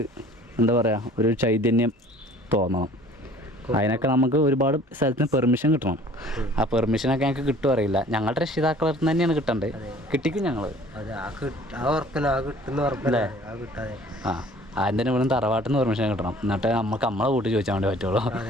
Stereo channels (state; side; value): normal; both; correlation 0.51